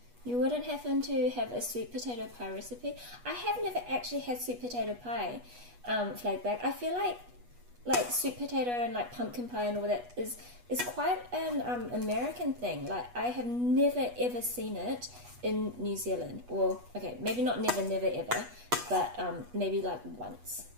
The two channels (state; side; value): late; left; 8.2 ms